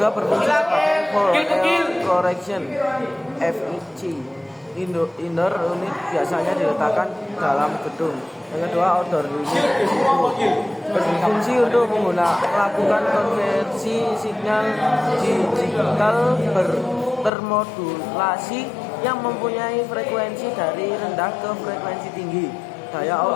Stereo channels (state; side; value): drops out; right; at 17.3 s